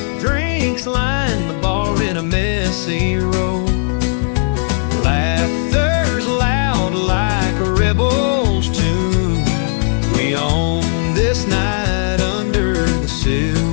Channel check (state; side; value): silent; right; 69 dB below the other